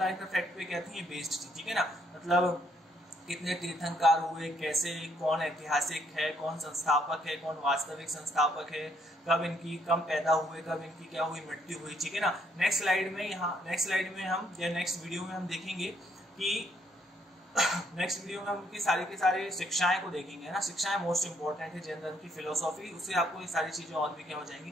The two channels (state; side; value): normal; both; correlation 0.70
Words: फैक्ट पे क्या थी, बेस्ड थी, ठीक है ना। मतलब कितने तीर्थंकर हुए, कैसे, कौन ऐतिहासिक है, कौन संस्थापक है, कौन वास्तविक संस्थापक है, कब पैदा हुए, कब इनकी क्या हुई, मृत्यु हुई, ठीक है ना। नेक्स्ट स्लाइड में हम या नेक्स्ट वीडियो में हम देखेंगे कि नेक्स्ट वीडियो में हम उनकी सारी के सारे शिक्षाएं को देखेंगे ना। शिक्षाएं मोस्ट इंपॉर्टेंट है, जैन धर्म की फिलोसॉफी, उससे आपको ये सारी चीजें और भी क्या हो जाएंगी,